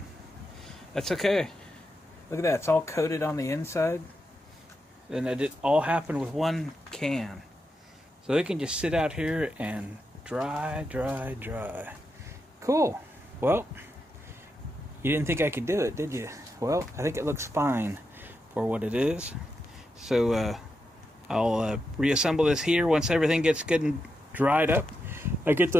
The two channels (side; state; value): both; normal; correlation 0.86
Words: That's okay. Look at that. It's all coated on the inside. And it all happened with one can. So it can just sit out here and dry, dry, dry. Cool. Well, you didn't think I could do it, did you? Well, I think it looks fine for what it is. So I'll reassemble this here once everything gets good and dried up. I get